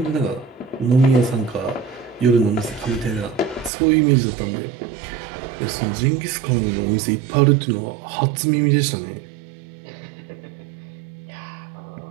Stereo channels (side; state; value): left; drops out; at 3.7 s